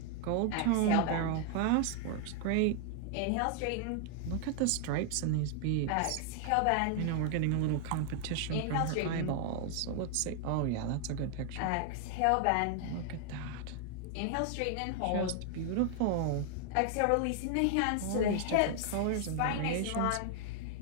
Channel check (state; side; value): different; both; correlation 0.00